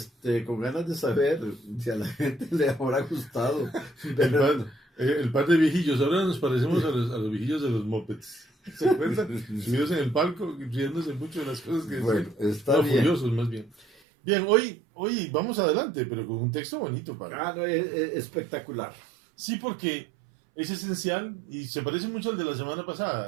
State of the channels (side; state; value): left; drops out; at 13.9 s